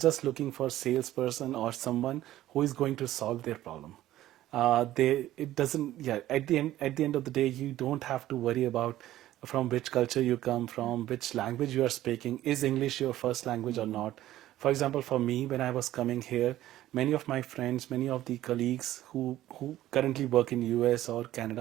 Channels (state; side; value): quieter; left; 14.2 dB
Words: just looking for salesperson or someone who is going to solve their problem. It doesn't, yeah, at the end of the day, you don't have to worry about from which culture you come from, which language you are speaking. Is English your first language or not? For example, for me, when I was coming here, many of my friends, many of the colleagues who currently work in US or